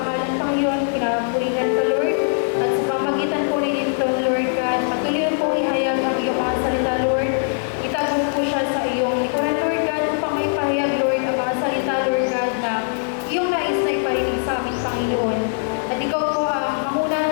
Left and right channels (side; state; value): right; silent; digital silence